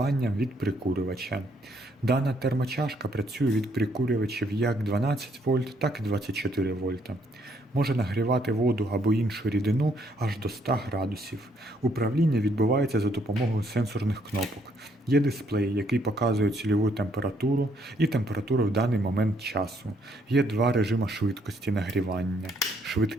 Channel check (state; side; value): normal; both; correlation 0.70